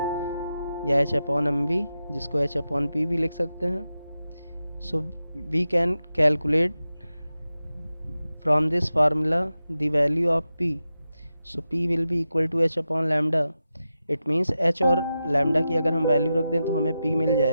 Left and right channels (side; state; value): both; inverted; correlation -0.91